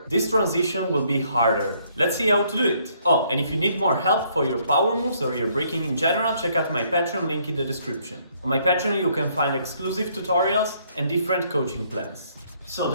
this transition will be harder. Let's see how to do it. Oh, and if you need more help for your power moves or your breaking in general, check out my Patreon link in the description. On my Patreon you can find exclusive tutorials and different coaching plans. So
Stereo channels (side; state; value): both; inverted; correlation -0.67